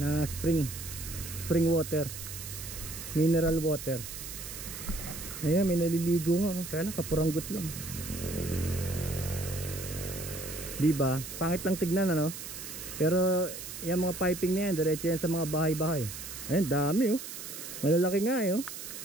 spring water, mineral water. Ayan, may naliligo nga, kaya lang kapuranggot lang. Diba? Pangit lang tignan, pero yung mga piping na yan, diretso yan sa mga bahay-bahay. Ayan, dami, malalaki nga,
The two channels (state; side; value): noise; right; hiss, 9 dB below the sound